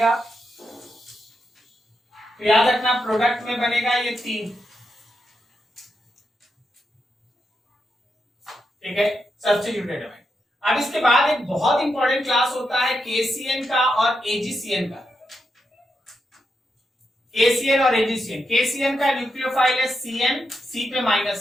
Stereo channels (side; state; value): both; normal; correlation 0.85